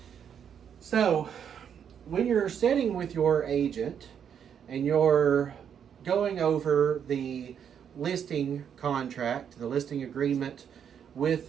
So when you're sitting with your agent and you're going over the listing contract, the listing agreement with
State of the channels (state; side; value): quieter; left; 8.2 dB